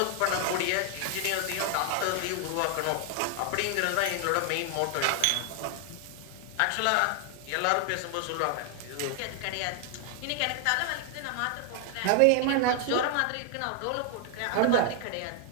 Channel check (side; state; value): both; different; correlation 0.00